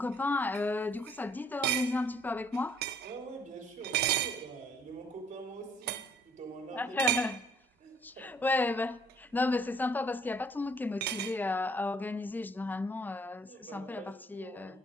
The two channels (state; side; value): normal; both; correlation 0.62